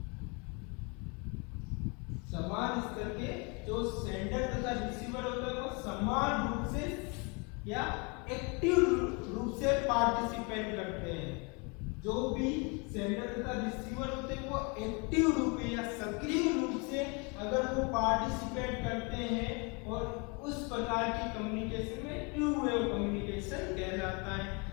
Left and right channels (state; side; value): quieter; right; 31.7 dB